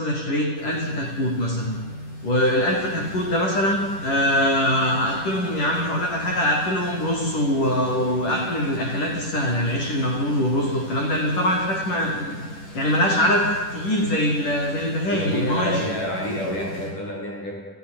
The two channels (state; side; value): late; right; 10 ms